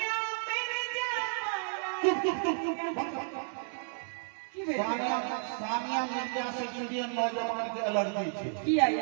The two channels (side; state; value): left; silent; 56 dB below the other